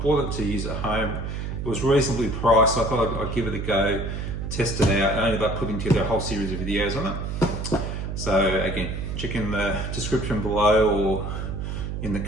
it to use at home. It was reasonably priced, so I thought I'd give it a go, test it out. I ended up putting together a whole series of videos on it. So again, check in the description below or in the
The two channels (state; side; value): noise; right; hum, 4 dB below the sound